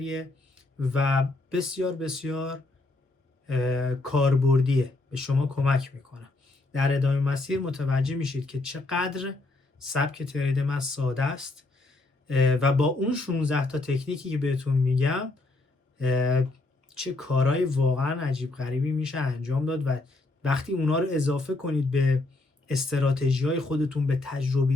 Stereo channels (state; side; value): quieter; right; 3.0 dB